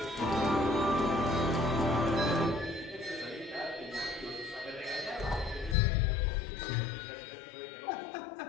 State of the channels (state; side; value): drops out; right; at 5.8 s